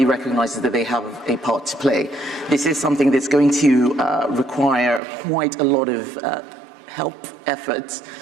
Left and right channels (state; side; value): drops out; left; at 5.0 s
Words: recognizes that they have a part to play. This is something that's going to require quite a lot of help, efforts,